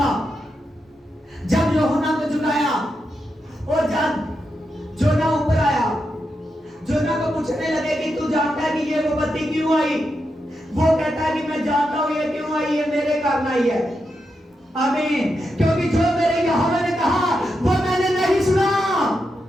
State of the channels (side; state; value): both; normal; correlation 0.86